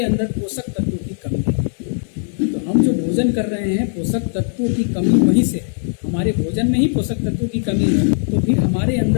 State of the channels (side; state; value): right; silent; digital silence